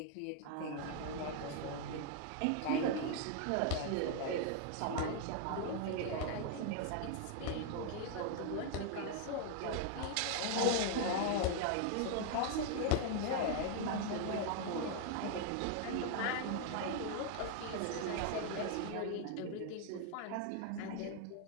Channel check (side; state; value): both; different; correlation 0.00